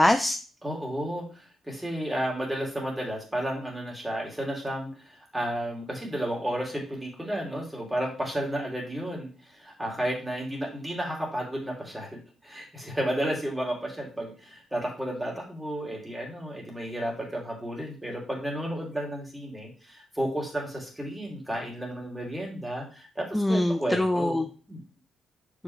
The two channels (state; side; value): normal; both; correlation 0.91